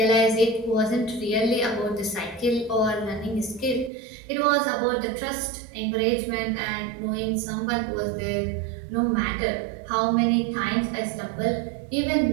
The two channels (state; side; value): drops out; left; at 3.9 s